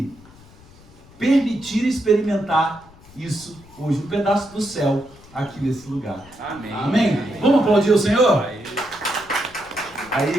permitir experimentar isso hoje, um pedaço do céu aqui nesse lugar. Amém. Amém? Vamos aplaudir o Senhor? Aí,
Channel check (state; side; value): noise; left; rumble, 24 dB below the sound